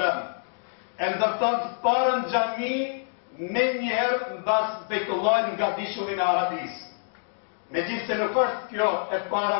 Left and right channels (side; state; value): right; silent; digital silence